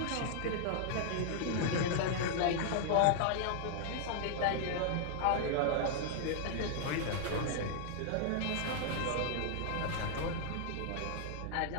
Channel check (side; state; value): both; different; correlation 0.00